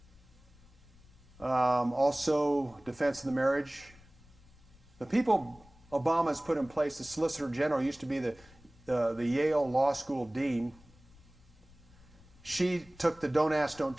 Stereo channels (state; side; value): noise; left; rumble, 25 dB below the sound